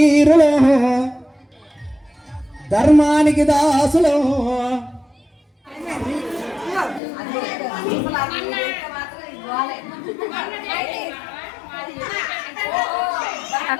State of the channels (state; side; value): drops out; right; at 7.0 s